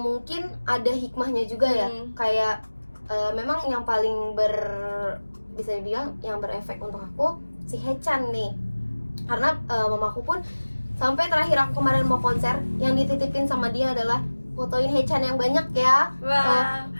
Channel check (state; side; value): inverted; both; correlation -1.00